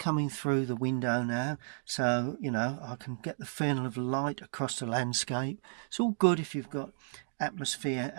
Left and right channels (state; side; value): silent; left; digital silence